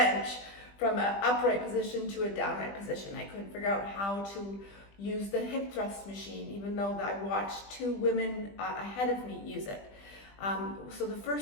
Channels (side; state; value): right; late; 20 ms